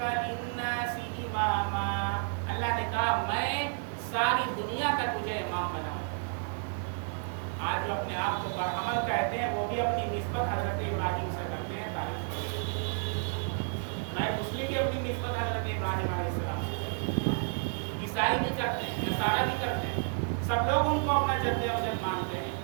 للناس اماما، اللہ نے کہا میں ساری دنیا کا تجھے امام بناؤں گا۔ آج جو اپنے آپ کو برہمن کہتے ہیں وہ بھی اپنی نسبت حضرت ابراہیم سے کرتے ہیں، تعریف کرتے ہیں۔ میں مسلم بھی اپنی نسبت حضرت ابراہیم علیہ السلام سے کرتے ہیں، عیسائی بھی کرتے ہیں، نصارہ بھی کرتے ہیں، سب لوگ ان کو اپنا جد امجد مانتے ہیں۔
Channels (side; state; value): left; silent; 57 dB below the other